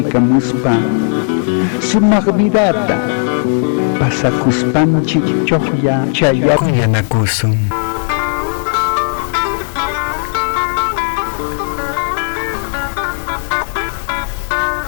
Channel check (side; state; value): right; silent; digital silence